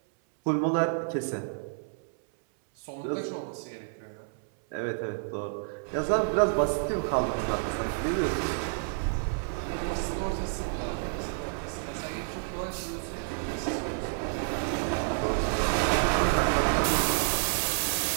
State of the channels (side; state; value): left; silent; 58 dB below the other